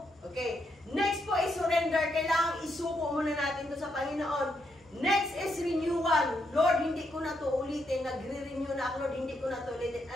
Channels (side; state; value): both; normal; correlation 0.78